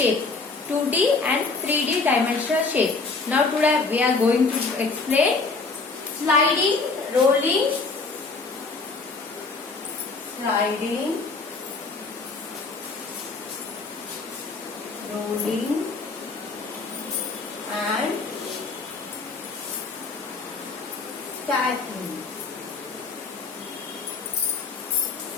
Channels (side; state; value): right; quieter; 4.1 dB